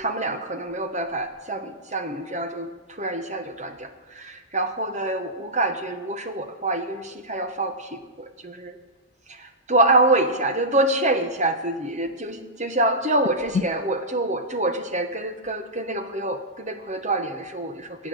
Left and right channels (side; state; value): both; normal; correlation -0.13